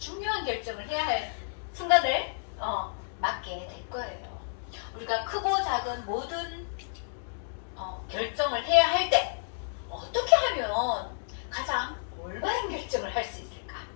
결정을 해야 할 순간을 맞게 될 거예요. 우리가 크고 작은 모든 결정을 해야 할 때 어떻게 하면 가장 올바른 결정을 할 수 있을까?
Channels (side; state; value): right; silent; digital silence